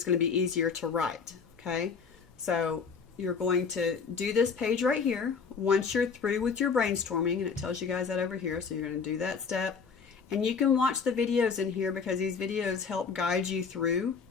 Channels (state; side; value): quieter; right; 5.7 dB